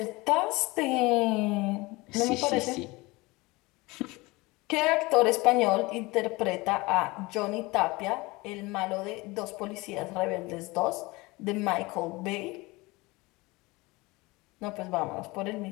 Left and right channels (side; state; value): right; quieter; 22.9 dB